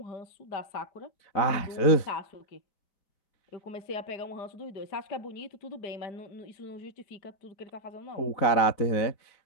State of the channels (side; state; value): right; late; 4.0 ms